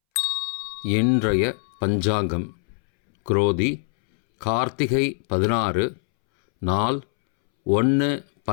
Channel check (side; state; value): right; silent; 64 dB below the other